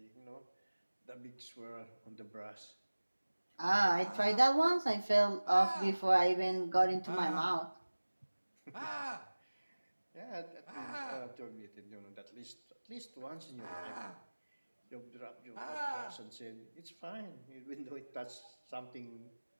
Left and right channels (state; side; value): inverted; both; correlation -1.00